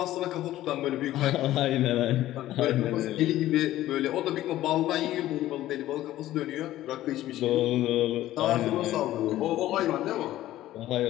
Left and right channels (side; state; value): right; quieter; 14.5 dB